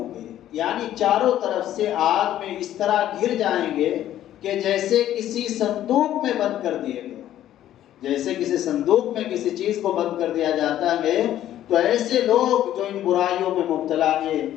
گے، یعنی چاروں طرف سے آگ میں اس طرح گھر جائیں گے کہ جیسے کسی صندوق میں بند کر دیے گئے، جیسے کسی صندوق میں کسی چیز کو بند کر دیا جاتا ہے۔ تو ایسے لوگ جو ان برائیوں میں مبتلا ہیں،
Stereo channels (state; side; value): quieter; right; 12.2 dB